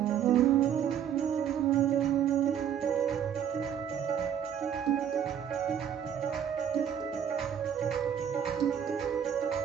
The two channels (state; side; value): quieter; left; 8.9 dB